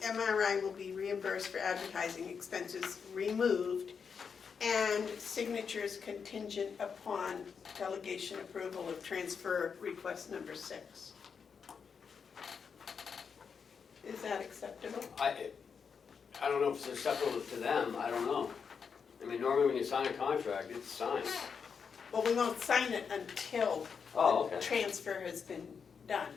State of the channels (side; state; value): right; quieter; 6.2 dB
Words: MRI will be reimbursed for advertising expenses removed and signatures contingent upon delegation approval of transfer request number 6. Is that acceptable? I don't know if it's acceptable to them, I don't know. I mean, normally when you sign a contract, it's signed. Well, we won't sign it until Oh, the okay. transfer has been done.